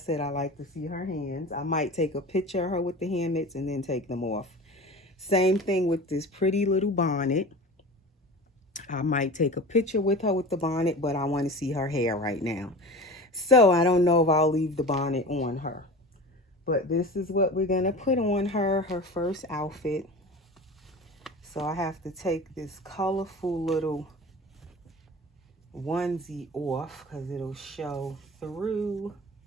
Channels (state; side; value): normal; both; correlation 0.34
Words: I like to see her hands. I might take a picture of her with the hand mitts and then take them off. Same thing with this pretty little bonnet. I might take a picture with her with the bonnet, but I want to see her hair right now. So I don't know if I'll leave the bonnet on her. But this is what we're going to put on her first outfit. So I have to take this colorful little onesie off because it'll show through.